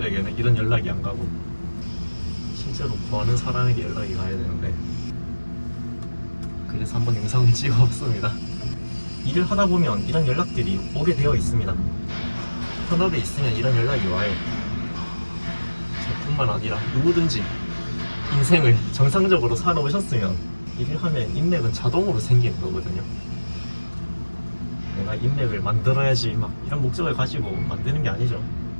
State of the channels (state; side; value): inverted; both; correlation -1.00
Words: 이런 연락이 안 가고 실제로 구하는 사람에게 연락이 가야 되는데, 그래서 한번 영상을 찍어봤습니다. 일을 하다 보면 이런 연락들이 오게 되어 있습니다. 현업에 있으면 이런 연락이 와요. 저뿐만 아니라 누구든지 인생을 정상적으로 살아오셨으면 일을 하면 인맥은 자동으로 생기는 거거든요. 내가 인맥을 만들어야지 막 이런 목적을 가지고 만드는 게 아니죠.